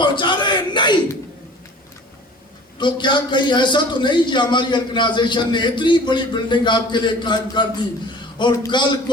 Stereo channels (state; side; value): normal; both; correlation 0.45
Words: رہے ہیں؟ نہیں. تو کیا کہیں ایسا تو نہیں کہ ہماری آرگنائزیشن نے اتنی بڑی بلڈنگ آپ کے لیے قائم کر دی اور کل